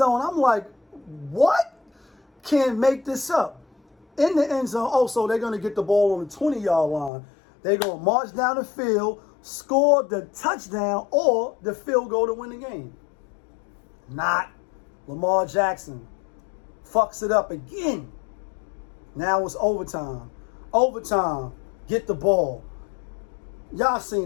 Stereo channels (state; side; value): drops out; right; at 7.1 s